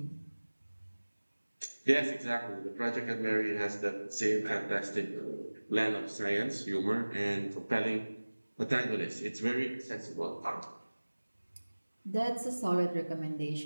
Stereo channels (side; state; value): both; inverted; correlation -1.00